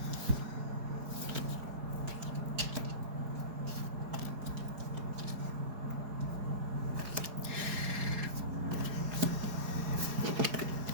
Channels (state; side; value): late; left; 4.8 ms